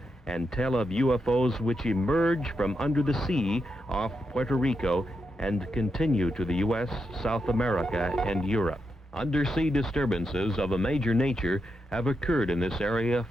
and tell of UFOs which emerge from under the sea off Puerto Rico and continue to the U.S., South America, and Europe. Undersea disturbances of a major nature have occurred in this area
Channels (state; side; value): normal; both; correlation 0.85